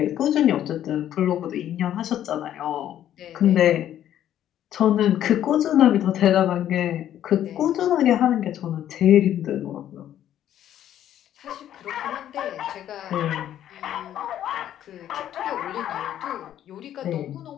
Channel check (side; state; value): right; quieter; 11.3 dB